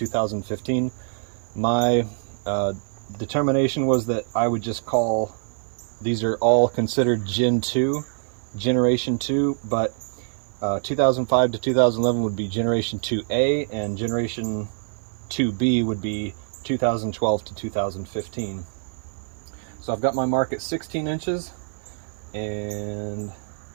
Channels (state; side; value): silent; left; 57 dB below the other